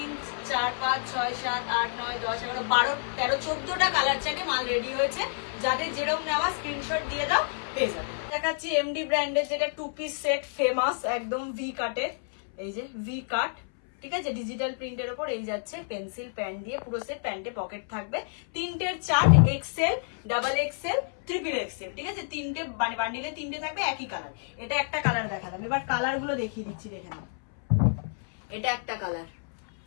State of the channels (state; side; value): silent; right; 59 dB below the other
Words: 4 5 6 7 8 9 10 11 12 13 14টা কালার চার্টে মাল রেডি হয়েছে। যাদের যেরকম নেওয়া স্ক্রিনশট দিয়ে দাও, পেয়ে যাবে। দেখাচ্ছি এমডি ব্র্যান্ডের যেটা 2 পিস সেট, ফেমাস একদম ভি কাটের। এই যে ভি কাট, ঠিক আছে? ডিজিটাল প্রিন্টের উপর। এই যাচ্ছে পেন্সিল প্যান্ট দিয়ে পুরো সেট, প্যান্টে পকেট থাকবে। তিনটের chart, XL, double XL, triple XL, ঠিক আছে? তিনটে মানে বান্ডিলে তিনটে থাকবে, একই কালার। এটা একটা কালার দেখালাম, এবার কালার গুলো দেখিয়ে দিচ্ছি, দেখে নাও। এটা একটা কালার,